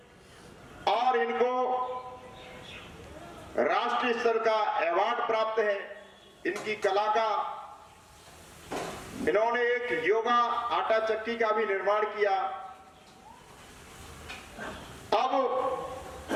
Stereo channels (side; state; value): both; identical; correlation 1.00